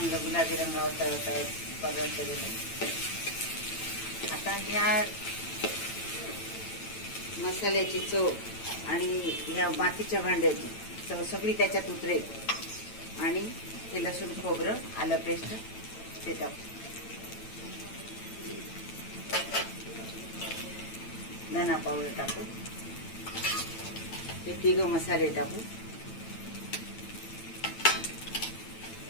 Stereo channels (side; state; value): right; late; 9.0 ms